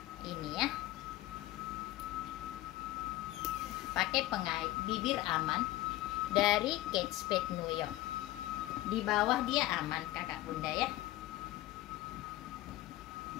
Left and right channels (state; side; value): quieter; right; 16.5 dB